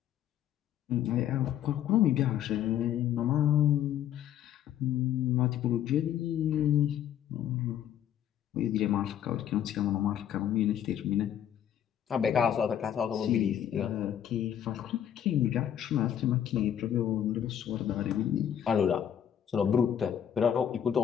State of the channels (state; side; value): quieter; right; 10.1 dB